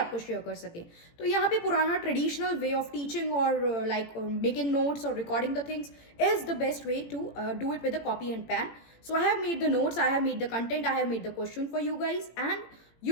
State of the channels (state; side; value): late; right; 18 ms